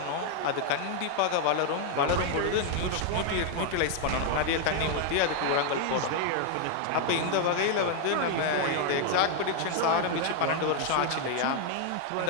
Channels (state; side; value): different; both; correlation 0.00